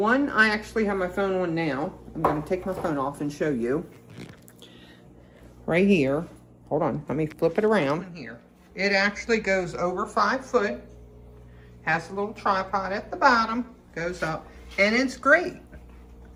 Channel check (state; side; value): identical; both; correlation 1.00